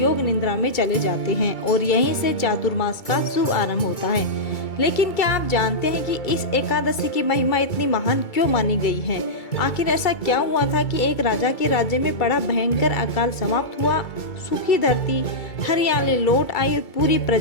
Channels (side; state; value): right; late; 2.3 ms